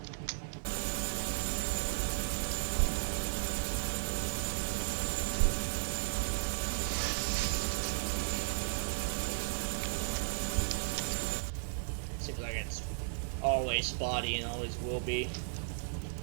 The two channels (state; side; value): silent; left; digital silence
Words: Seems like it's always spotty and always will be.